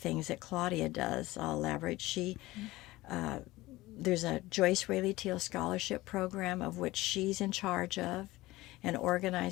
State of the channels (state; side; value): quieter; right; 18.8 dB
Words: that Claudia does. I'll elaborate. There's a Joyce Raley Teel scholarship program of which she's in charge of and